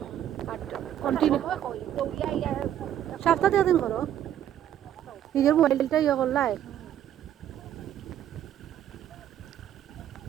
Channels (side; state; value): left; quieter; 11.0 dB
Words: কন্টিনিউ দৌড়িয়া ইয়া সপ্তাহে দিন করো নিজের মোবাইলটা ইয়ে করলাই